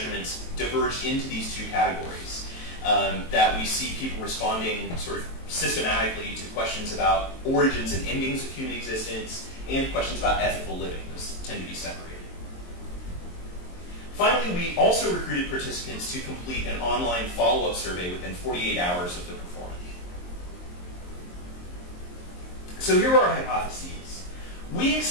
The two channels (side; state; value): right; late; 23 ms